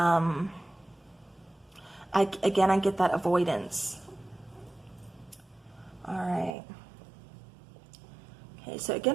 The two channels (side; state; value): left; drops out; at 6.6 s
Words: get that avoidance. All right. Okay, so